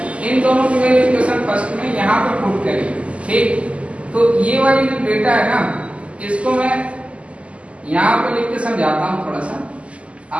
इन दोनों की वैल्यू इक्वेशन फर्स्ट में यहाँ पे पुट करिए। ठीक, तो ये वाली जो डेटा है ना, इसको मैं यहाँ पे लिख के समझाता हूँ, थोड़ा सा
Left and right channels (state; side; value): late; left; 0.060 ms